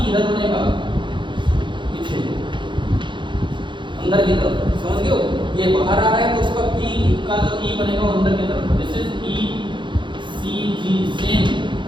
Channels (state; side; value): late; left; 0.23 ms